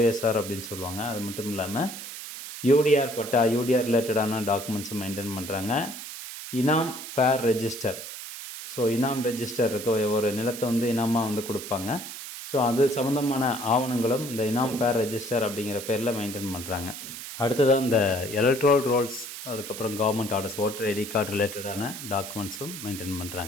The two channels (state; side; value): noise; right; hiss, 10 dB below the sound